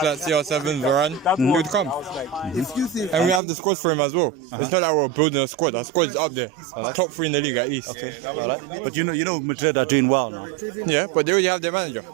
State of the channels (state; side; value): drops out; left; at 3.4 s